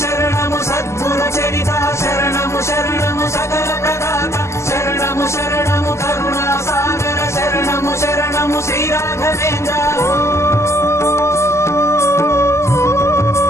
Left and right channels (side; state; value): right; late; 0.13 ms